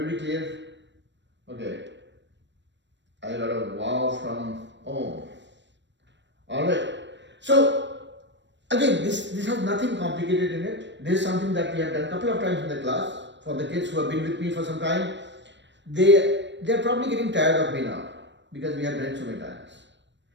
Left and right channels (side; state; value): left; late; 0.53 ms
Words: clear? Okay. I got a wow from Om. Alright. So, again, this has nothing complicated in it. This is something that we have done a couple of times in the class. For the kids who have been with me for some time, they're probably getting tired of me now, because we have done it so many times.